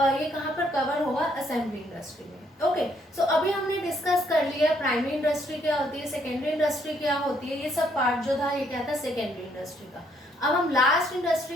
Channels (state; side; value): normal; both; correlation 0.69